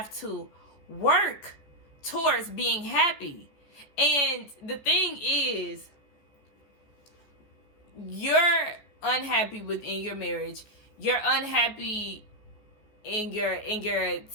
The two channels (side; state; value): right; late; 14 ms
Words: to work towards being happy. And the thing is, you're unhappy within your marriage. You're unhappy in your